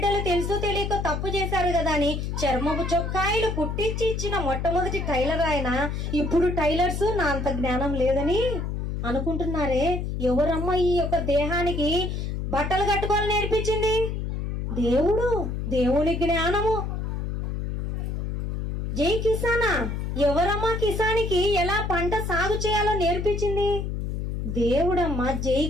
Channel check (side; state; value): left; noise; hum, 3 dB below the sound